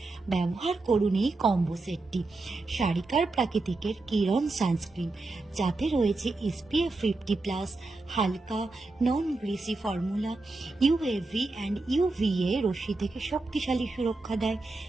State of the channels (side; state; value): left; quieter; 3.2 dB